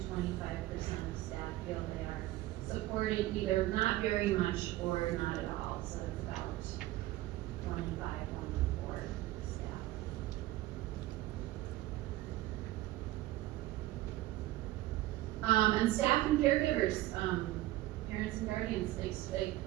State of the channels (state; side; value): quieter; left; 16.6 dB